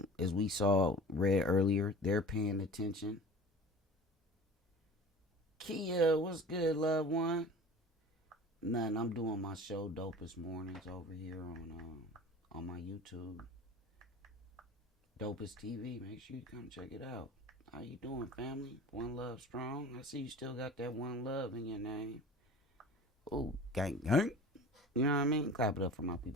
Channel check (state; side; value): normal; both; correlation 0.40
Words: as we read earlier, they're paying attention. Kia, what's good, loved one? Nothing. I'm doing my show Dopest Mornings over here on my YouTube. Dopest TV. Make sure you come check it out. How you doing, family? One love strong. I see you still got that one love in your name. Ooh, gang, gang. You know what I mean? Clap it up for my